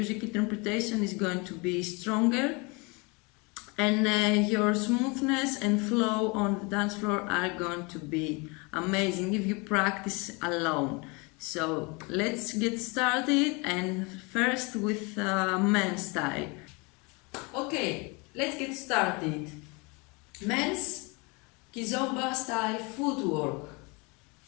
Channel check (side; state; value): right; quieter; 28.8 dB